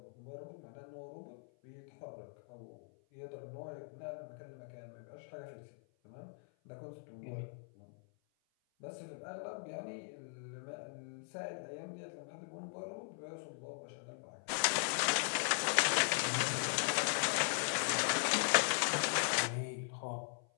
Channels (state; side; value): silent; right; 51 dB below the other